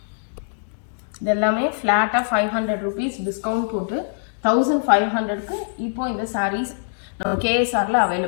இது எல்லாமே ஃபிளாட்டா 500 rupees டிஸ்கவுண்ட் போட்டு 1500க்கு இப்போ இந்த சாரீஸ் நம்ம கேஎஸ்ஆர்ல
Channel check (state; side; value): silent; right; digital silence